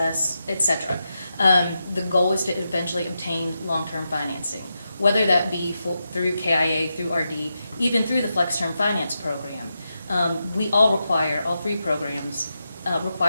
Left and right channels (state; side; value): inverted; both; correlation -0.87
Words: et cetera. The goal is to eventually obtain long-term financing, whether that be through KIA, through RD, even through the Flex Term Finance Program. All three programs